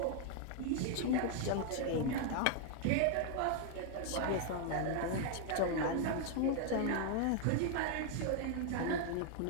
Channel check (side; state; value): both; different; correlation 0.00